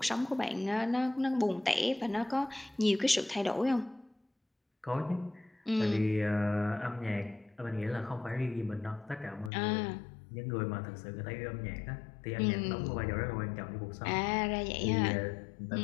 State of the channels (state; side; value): drops out; right; at 9.5 s